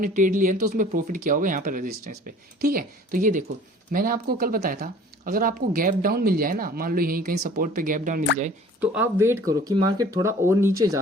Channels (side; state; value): both; normal; correlation 0.49